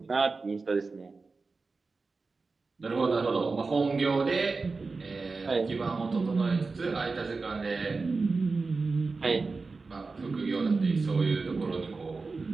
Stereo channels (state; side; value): quieter; left; 4.1 dB